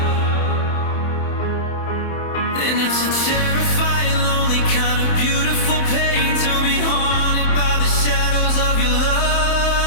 and it's a terrifying, lonely kind of beautiful pain to be haunted by the shadows of your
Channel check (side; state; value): right; late; 27 ms